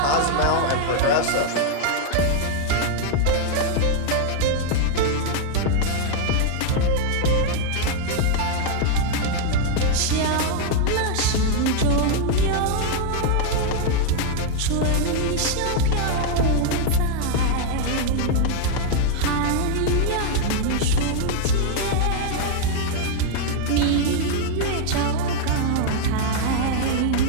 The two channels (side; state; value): both; different; correlation 0.00